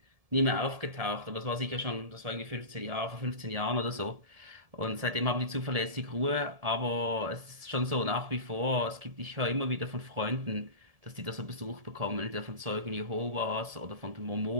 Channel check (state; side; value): late; left; 1.7 ms